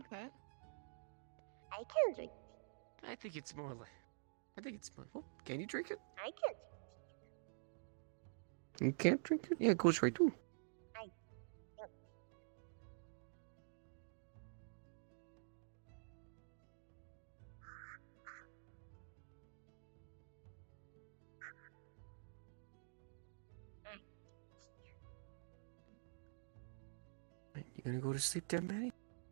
that. I can drink. I think it's more like. Oh, can you drink it? I can drink. You can't drink it? Yeah, it goes right through. You gonna go to sleep there, Maddie?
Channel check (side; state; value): left; silent; digital silence